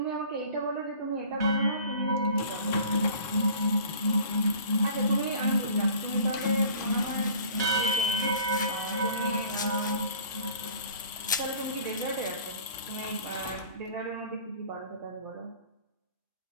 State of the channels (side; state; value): both; inverted; correlation -0.48